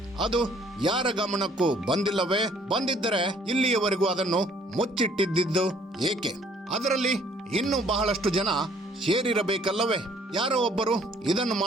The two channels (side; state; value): both; normal; correlation 0.60